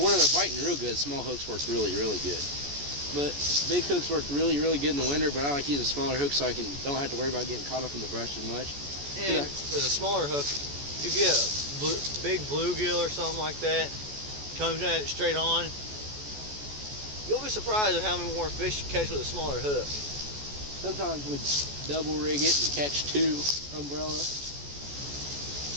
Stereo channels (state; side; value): late; left; 14 ms